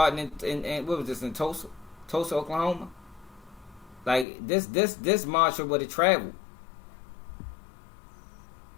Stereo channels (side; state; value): right; drops out; at 4.2 s